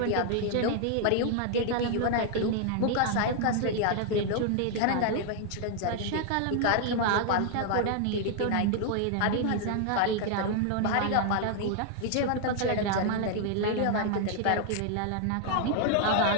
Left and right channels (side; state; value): both; different; correlation 0.00